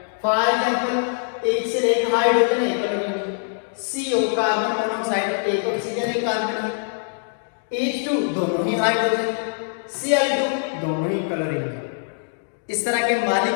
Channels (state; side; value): silent; right; digital silence